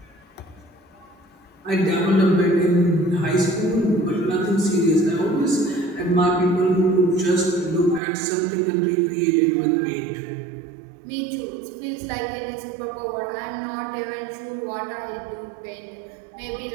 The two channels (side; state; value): left; drops out; at 8.0 s